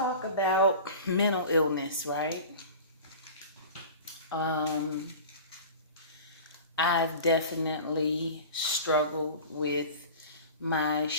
about mental illness, right? Um, I've definitely struggled with my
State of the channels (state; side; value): inverted; both; correlation -0.37